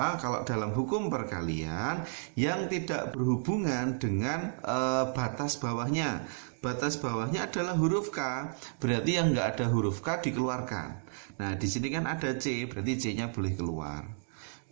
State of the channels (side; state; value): left; silent; digital silence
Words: Kalau dalam hukum perkalian yang tidak berhubungan dengan batas bawahnya. Batas bawahnya adalah huruf K. Berarti yang enggak ada huruf K dikeluarkan. Nah, di sini kan ada C, berarti C-nya boleh keluar.